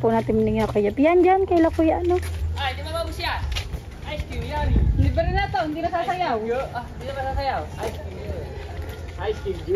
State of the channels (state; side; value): identical; both; correlation 1.00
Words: natin binigyan Kuya Jeff. Yan dyan, kaila Kuya ano. Ay, di ba babus yan? Ice cream, Yummy. Libre na to, hindi na sasayaw. Hindi na masasayaw. Ice cream, ice cream,